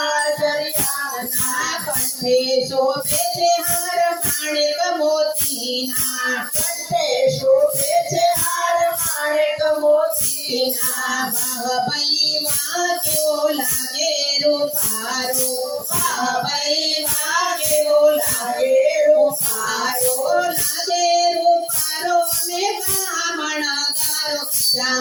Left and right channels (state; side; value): identical; both; correlation 1.00